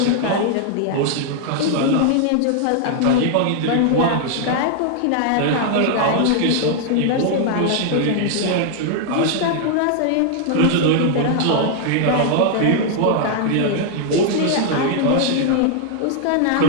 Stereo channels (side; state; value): both; different; correlation 0.00